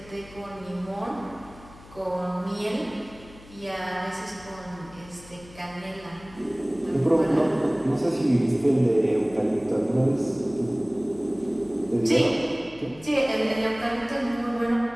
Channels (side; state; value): left; noise; hum, 21 dB below the sound